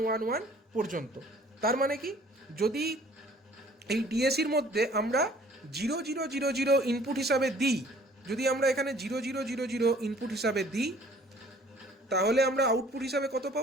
পর্যন্ত। তার মানে কি, যদি এই ডিএসির মধ্যে আমরা 0000 ইনপুট হিসাবে দিই, যদি আমরা এখানে 0000 ইনপুট হিসাবে দিই, তাহলে আমরা আউটপুট হিসাবে কত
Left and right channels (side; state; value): both; normal; correlation 0.54